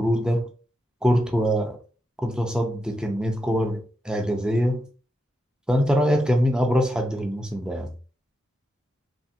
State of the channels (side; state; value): both; normal; correlation 0.86